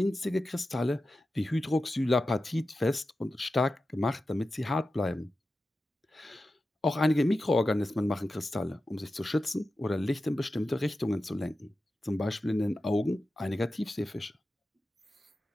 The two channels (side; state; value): both; normal; correlation 0.92